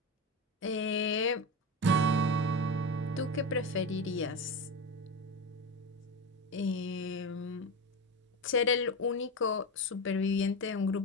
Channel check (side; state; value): both; normal; correlation 0.20